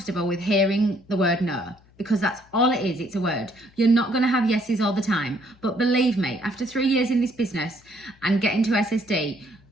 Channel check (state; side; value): noise; left; hum, 29 dB below the sound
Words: with hearing the word no, because that's all it is. It's a word. You're not going to have yeses all the time. But believe me, after 3 years in this business and getting to SSD,